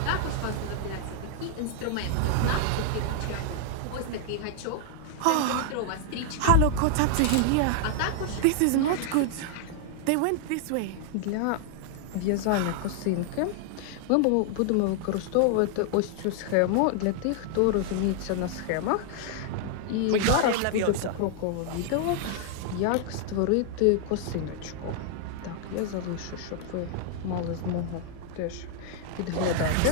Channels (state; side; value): different; both; correlation 0.00